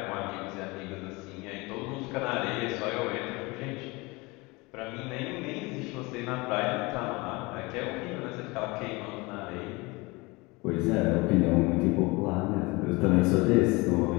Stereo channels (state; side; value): quieter; right; 24.8 dB